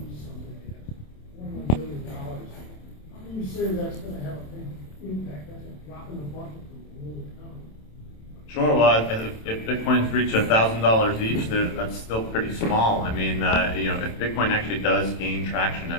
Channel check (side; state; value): right; late; 27 ms